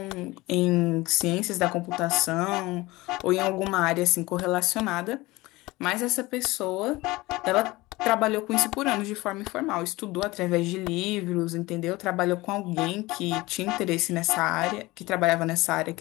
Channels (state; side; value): quieter; right; 20.6 dB